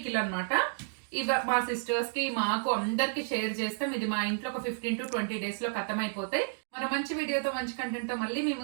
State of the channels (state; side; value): silent; left; digital silence